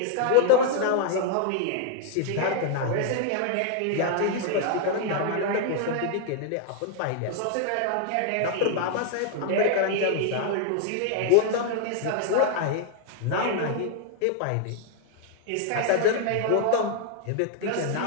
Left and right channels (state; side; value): different; both; correlation 0.00